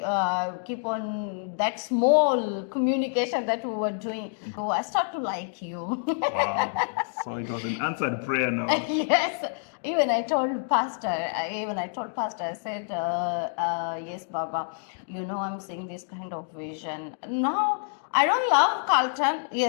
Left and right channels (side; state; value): right; silent; digital silence